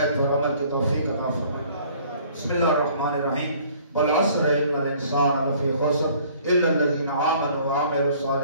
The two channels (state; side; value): inverted; both; correlation -0.56